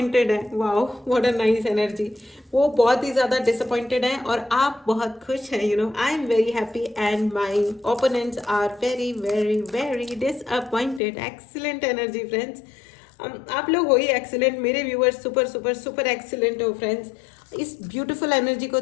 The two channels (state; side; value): drops out; right; at 11.0 s